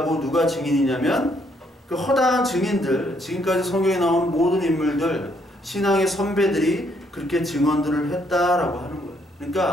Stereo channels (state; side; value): normal; both; correlation 0.70